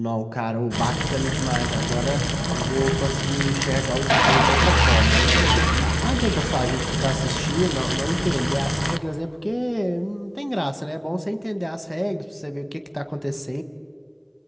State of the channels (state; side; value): identical; both; correlation 1.00